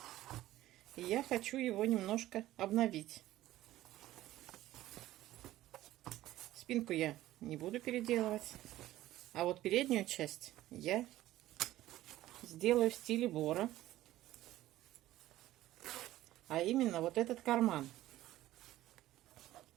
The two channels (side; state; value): left; quieter; 15.0 dB